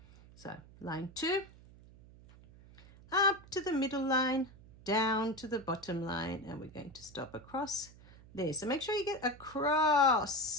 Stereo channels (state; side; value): noise; right; hum, 22 dB below the sound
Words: So line 2, up to the middle line, down to the bottom line, and we're going to stop across there. So make sure you get